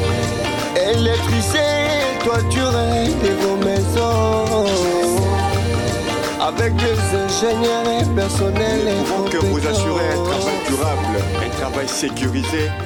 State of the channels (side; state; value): both; identical; correlation 1.00